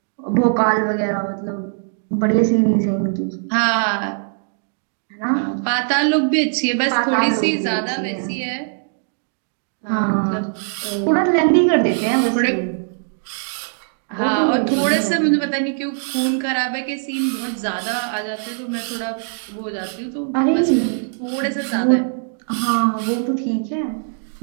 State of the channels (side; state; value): left; silent; 62 dB below the other